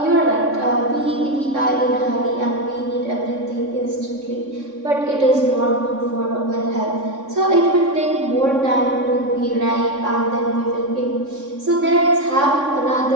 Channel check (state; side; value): late; left; 3.6 ms